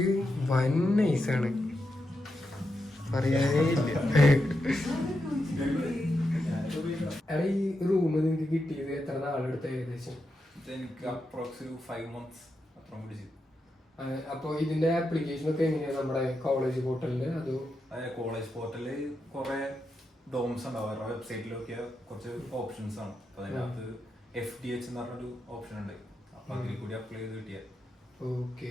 വൻ നൈസാണ്, പറയാനേ ഇല്ല. ഈ റൂം നിങ്ങൾക്ക് കിട്ടിയത് എത്ര നാളെടുത്ത് ഏകദേശം? അപ്പൊ ഇതിന്റെ ആപ്ലിക്കേഷൻ ഒക്കെ എങ്ങനെയാ നമ്മുടെ കോളേജ് പോർട്ടലില്? അതോ കോളേജ് പോർട്ടലില് കുറെ ഡോംസ് ഉണ്ടാവും. അവരുടെ വെബ്സൈറ്റിലൊക്കെ കുറച്ച് ഓപ്ഷൻസ് ആണ്. അപ്പൊ അതിനകത്ത് FDH എന്ന് പറഞ്ഞൊരു ഓപ്ഷൻ ഉണ്ട്. അപ്പൊ അതിൽ കൂടി അപ്ലൈ ചെയ്ത് കിട്ടിയ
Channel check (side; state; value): both; normal; correlation 0.86